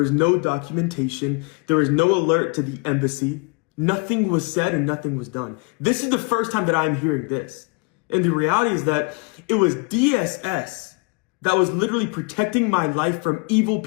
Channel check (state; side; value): quieter; right; 33.1 dB